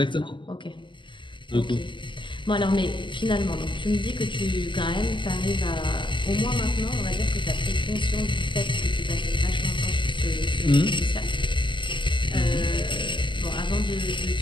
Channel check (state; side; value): late; right; 0.24 ms